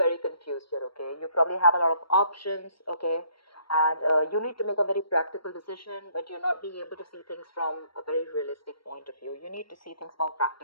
confused here, okay? You probably have a lot of options, okay? And you need to make a very practical decision, but you're not being able to see things from a very realistic point of view. You need to see things more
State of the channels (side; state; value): right; late; 0.74 ms